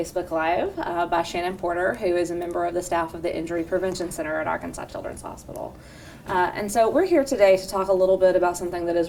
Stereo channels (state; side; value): identical; both; correlation 1.00